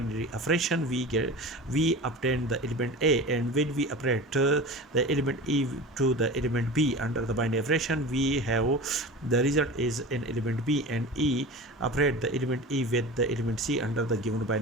operation. We obtain the element A, and when we operate the element E to the element B under the binary operation, we have the result is an element B, and E operate the element E with the element C under the given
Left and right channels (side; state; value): both; normal; correlation 0.33